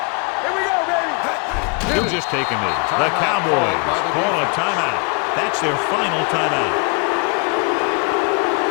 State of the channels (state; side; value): quieter; right; 34.1 dB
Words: Here we go, baby. He'll just take a knee. The Cowboys call a timeout. That's their final timeout.